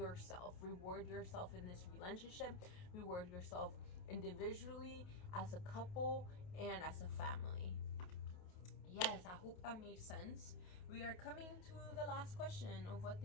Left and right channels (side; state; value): right; late; 28 ms